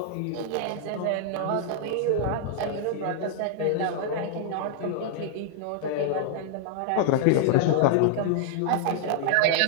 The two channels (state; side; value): different; both; correlation 0.00